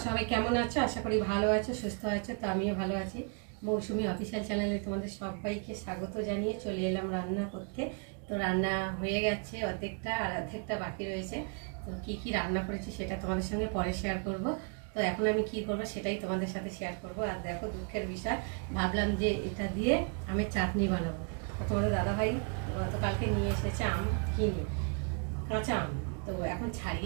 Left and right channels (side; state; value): left; quieter; 38.3 dB